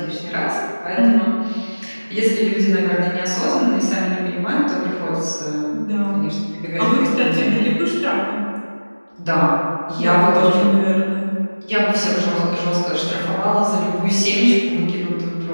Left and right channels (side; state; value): both; inverted; correlation -1.00